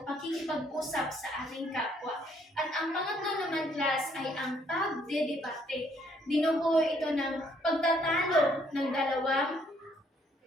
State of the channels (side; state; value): both; normal; correlation 0.67